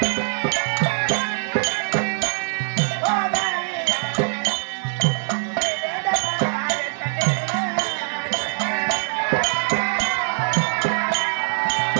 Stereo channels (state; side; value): silent; left; digital silence